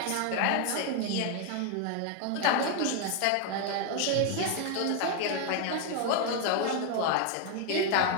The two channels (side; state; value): both; different; correlation 0.01